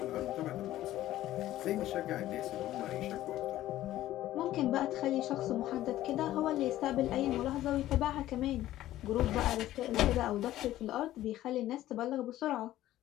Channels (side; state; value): right; quieter; 14.3 dB